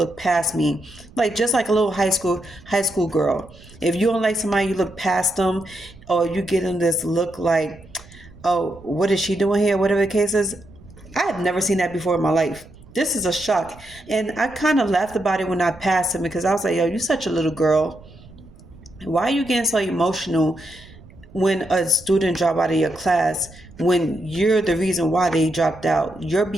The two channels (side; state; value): right; noise; rumble, 22 dB below the sound